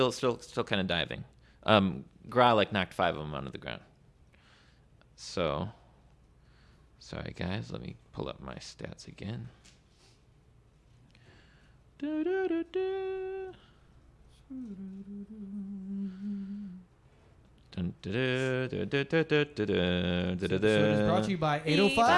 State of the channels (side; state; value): both; identical; correlation 1.00